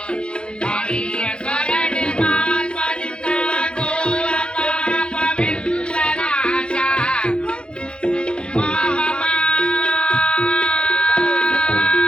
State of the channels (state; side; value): late; right; 0.055 ms